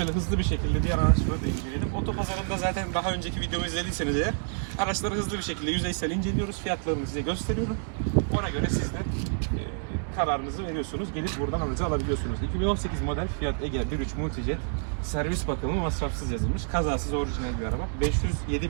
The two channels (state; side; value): silent; left; digital silence